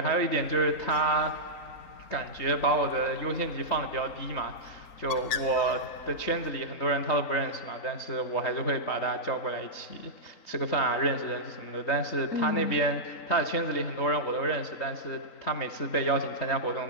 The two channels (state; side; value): late; right; 3.9 ms